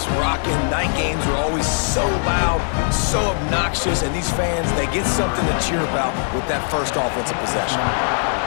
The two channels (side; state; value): right; silent; 65 dB below the other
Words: rocking. Night games are always so loud, so obnoxious, and these fans, they get something to cheer about with that first offensive possession.